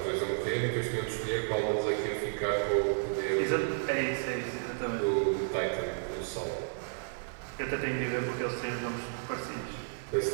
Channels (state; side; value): silent; left; 56 dB below the other